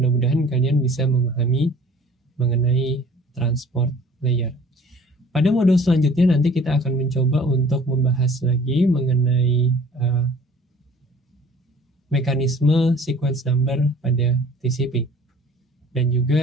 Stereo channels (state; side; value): normal; both; correlation 0.50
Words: kalian bisa memahami mengenai transport layer. Pada modul selanjutnya nanti kita akan mencoba untuk membahas lagi mengenai mekanisme sequence number pada TCP dan